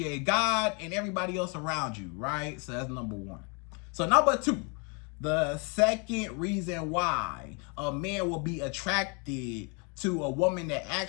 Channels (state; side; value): quieter; right; 34.1 dB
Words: God and everybody else around you, right? So that's number one. So number two, the second reason why a man will be attracted to a woman that